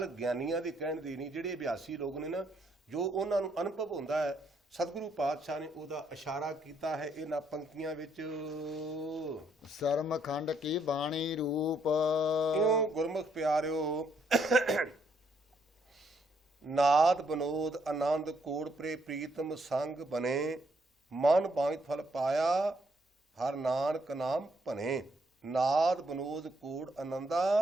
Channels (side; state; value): both; normal; correlation 0.72